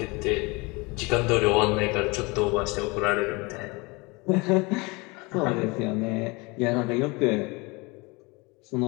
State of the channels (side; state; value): right; quieter; 26.4 dB